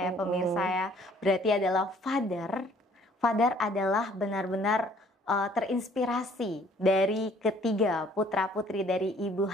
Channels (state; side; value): normal; both; correlation 0.59